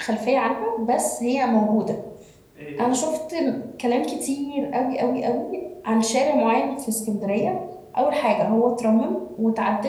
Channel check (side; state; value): both; identical; correlation 1.00